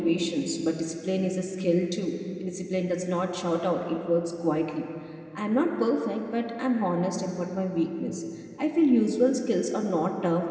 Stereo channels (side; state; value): both; identical; correlation 1.00